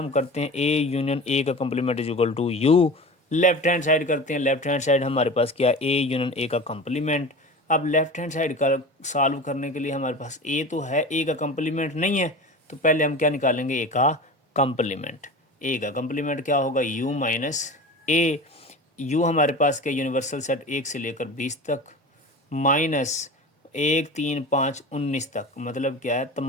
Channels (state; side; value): normal; both; correlation 0.33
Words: करते हैं a यूनियन a का complement is equal to u, left hand side करते हैं। लेफ्ट हैंड साइड हमारे पास क्या, a यूनियन a का कंप्लीमेंट। अब लेफ्ट हैंड साइड का सॉल्व करने के लिए हमारे पास a तो है, a का कंप्लीमेंट नहीं है, तो पहले हम क्या निकालेंगे, a का कंप्लीमेंट। a का कंप्लीमेंट क्या होगा, u माइनस a, u हमारे पास क्या यूनिवर्सल सेट 1 से लेकर 20 तक माइनस 1 3 5 19 तक, मतलब क्या है